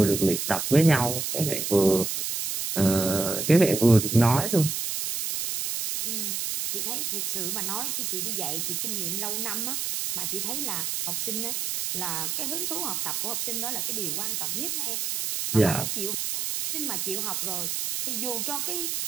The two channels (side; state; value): right; noise; hiss, 2 dB below the sound